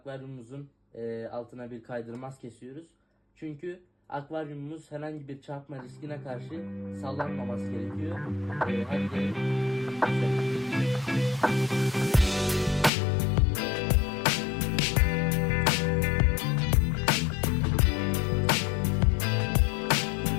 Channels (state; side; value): drops out; right; at 12.9 s